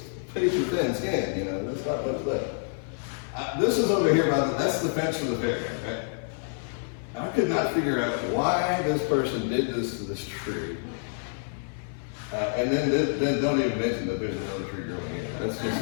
paper thin skin, you know, there's not much left. This is over here that's the fence for the fairground, right? I could not figure out why this person did this to this tree. And then don't even mention that there's another tree growing here. That's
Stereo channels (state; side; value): silent; right; digital silence